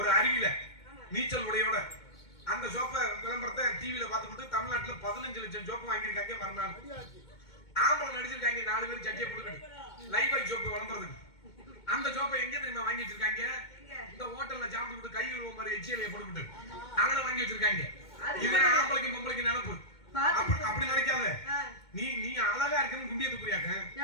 அருவியில நீச்சல் உடையோட. அந்த சோப்பை விளம்பரத்தை டிவில பார்த்துக்கிட்டு தமிழ்நாட்டுல 15 லட்சம் சோப்பு வாங்கியிருக்காங்க மறுநாள். ஆம்பளை நடிச்சிருக்காங்க 4 பேர் சட்டியை போட்டுக்கிட்டு லைஃபாய் சோப்பு விளம்பரத்துக்கு. அந்த சோப்பை எங்க தெரியுமா வாங்கி வச்சிருக்காங்க? இந்த ஹோட்டல்ல சாப்பிட்டு கை கழுவ மாதிரி எச்சியலையை போட்டுக்கிட்டு அங்கே வாங்கி வச்சிருக்காங்க. இது ஆம்பளைக்கும் பொம்பளைக்கும் நினைப்பு. அப்படி நினைக்காத. நீ அழகா இருக்குன்னு குண்டிய துப்புறியாக்க.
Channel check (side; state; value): right; late; 2.2 ms